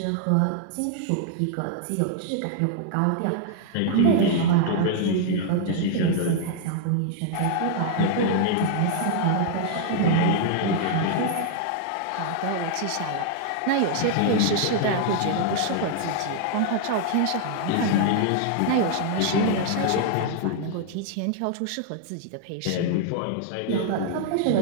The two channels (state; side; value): different; both; correlation -0.01